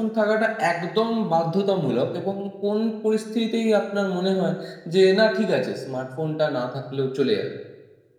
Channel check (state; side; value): identical; both; correlation 1.00